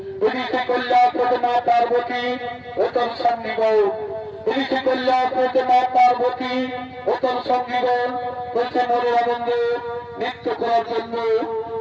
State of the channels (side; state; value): both; identical; correlation 1.00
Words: যদি সে কল্যাণ করতে মা পার্বতী ও তোর সঙ্গীগণ, যদি সে কল্যাণ করতে মা পার্বতী ও তোর সঙ্গীগণ বলছে মনের আনন্দে নৃত্য করার জন্য